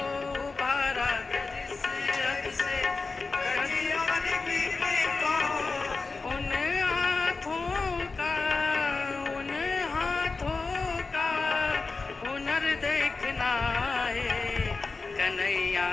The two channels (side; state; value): right; quieter; 4.0 dB